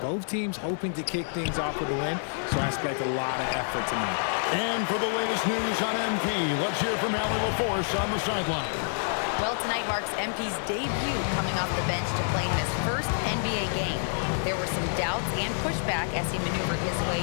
Both teams hoping to kick things off with a win, so I expect a lot of effort tonight. And for the latest news on MP, let's hear from Allie LaForce on the sideline. Well, tonight marks MP's debut coming off the bench to play in his first NBA game. There were some doubts and pushback as he maneuvered his way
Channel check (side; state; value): right; silent; 59 dB below the other